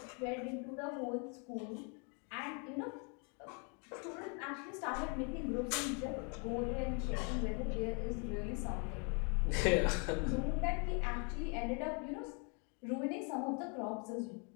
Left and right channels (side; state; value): right; quieter; 36.8 dB